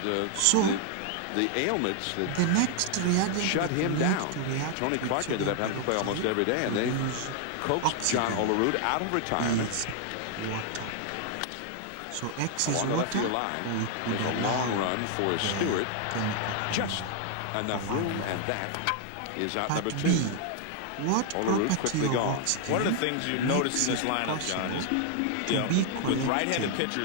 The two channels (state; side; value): different; both; correlation 0.00